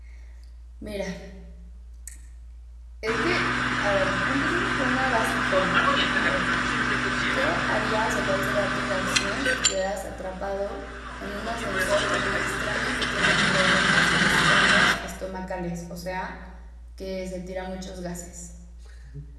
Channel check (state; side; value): identical; both; correlation 1.00